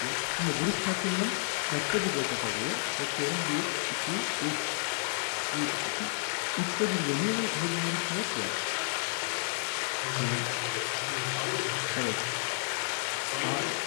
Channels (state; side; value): silent; right; 57 dB below the other